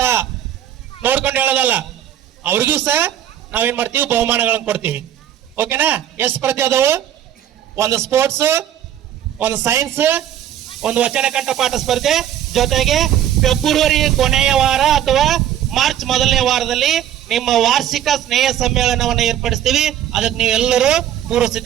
ನೋಡ್ಕೊಂಡು ಹೇಳೋದಲ್ಲ, ಅವ್ರಿಗೂ ಸಹ ನಾವೇನ್ ಮಾಡ್ತೀವಿ, ಬಹುಮಾನಗಳನ್ನ ಕೊಡ್ತೀವಿ. ಓಕೆನಾ? ಎಷ್ಟು ಸ್ಪರ್ಧೆ ಅದಾವು? ಒಂದು ಸ್ಪೋರ್ಟ್ಸ್, ಒಂದು ಸೈನ್ಸ್, ಒಂದು ವಚನ ಕಂಠಪಾಠ ಸ್ಪರ್ಧೆ, ಜೊತೆಗೆ ಫೆಬ್ರವರಿ ಕೊನೆಯ ವಾರ ಅಥವಾ ಮಾರ್ಚ್ ಮೊದಲನೇ ವಾರದಲ್ಲಿ ನಿಮ್ಮ ವಾರ್ಷಿಕ ಸ್ನೇಹ ಸಮ್ಮೇಳನವನ್ನು ಏರ್ಪಡಿಸ್ತೀವಿ. ಅದಕ್ಕೆ ನೀವೆಲ್ಲರೂ ಪೂರ್ವ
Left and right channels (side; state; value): left; quieter; 10.9 dB